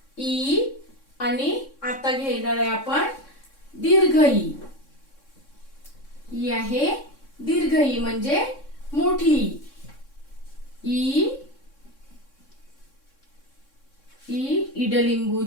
ई आणि आता घेणार आहे आपण दीर्घ ई. ई आहे दीर्घ ई म्हणजे मोठी ई. ई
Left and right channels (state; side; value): late; right; 3.6 ms